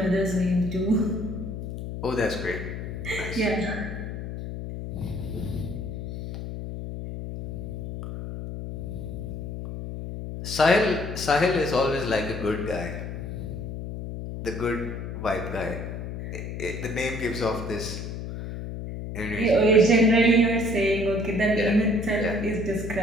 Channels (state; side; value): noise; left; hum, 7 dB below the sound